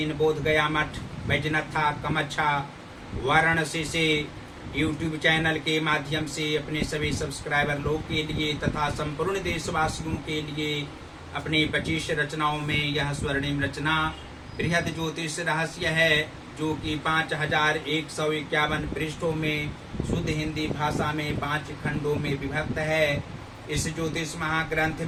बोध गया मठ, बैजनाथा कमच्छा, वाराणसी से यूट्यूब चैनल के माध्यम से अपने सभी सब्सक्राइबर लोग के लिए तथा संपूर्ण देशवासियों के लिए अपनी 25 रचनाओं में यह स्वर्णिम रचना बृहद ज्योतिष रहस्य है, जो कि 5151 पृष्ठों में शुद्ध हिंदी भाषा में 5 खंडों में विभक्त है। इस ज्योतिष महाग्रंथ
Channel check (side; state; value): both; identical; correlation 1.00